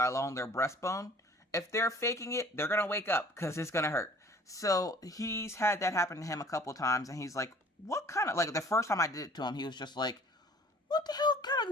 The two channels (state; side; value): normal; both; correlation 0.51